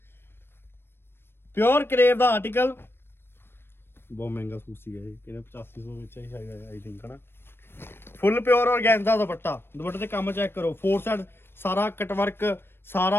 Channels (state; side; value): late; right; 0.11 ms